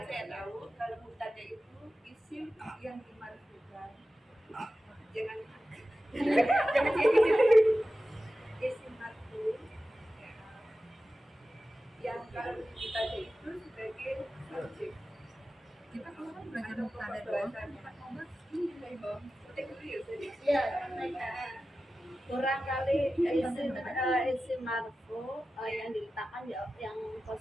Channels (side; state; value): both; normal; correlation 0.94